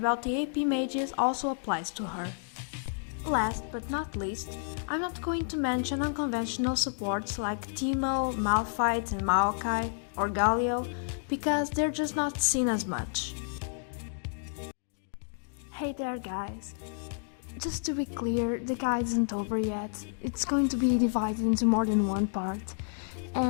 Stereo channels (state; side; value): silent; right; digital silence